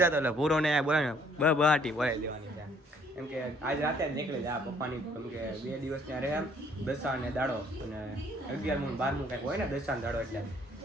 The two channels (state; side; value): normal; both; correlation 0.62